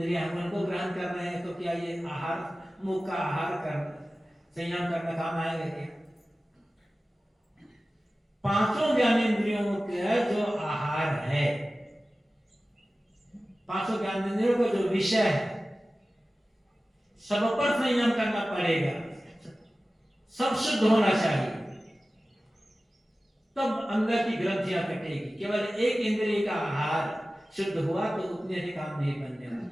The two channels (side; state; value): both; normal; correlation 0.96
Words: उनको ग्रहण कर रहे हैं, तो क्या ये आहार, मुख का आहार कर संयम करना काम आएगा क्या? पांचों ज्ञानेंद्रियों का जो आहार है, पांचों ज्ञानेंद्रियों का जो विषय है, सब पर संयम करना पड़ेगा, सब शुद्ध होना चाहिए, तब अंदर की ग्रंथियां कटेगी। केवल एक इंद्रिय का आहार शुद्ध हुआ तो उतने से काम नहीं बनने